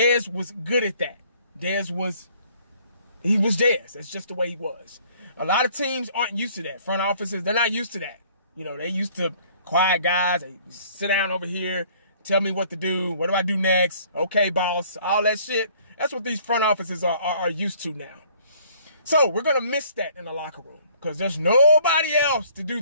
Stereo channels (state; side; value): inverted; both; correlation -0.58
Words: was good at that. He was Dez. That's just the way he was. A lot of teams aren't used to that. Front offices, they're not used to that. You know, they used to quiet guys. They sit down over here, tell me what to do. What do I do next? Okay, boss. All that shit. That's what these front offices are used to now. So we're going to miss that in the locker room because there's nobody else to do